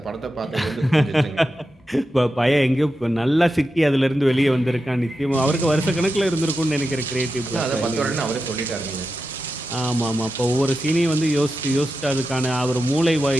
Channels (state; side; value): normal; both; correlation 0.90